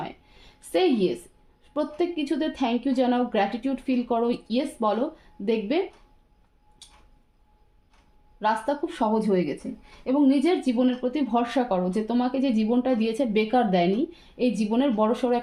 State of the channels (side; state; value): both; identical; correlation 1.00